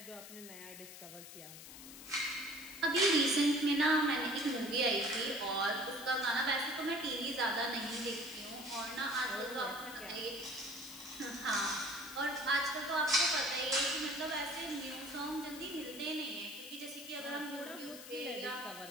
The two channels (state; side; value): noise; left; hiss, 14 dB below the sound